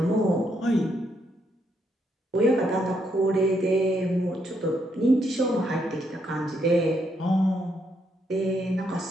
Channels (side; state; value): both; normal; correlation 0.76